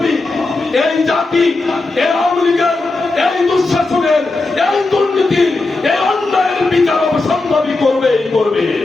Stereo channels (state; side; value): quieter; right; 3.3 dB